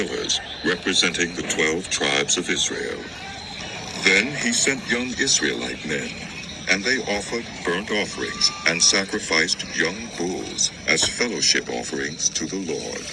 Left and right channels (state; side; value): identical; both; correlation 1.00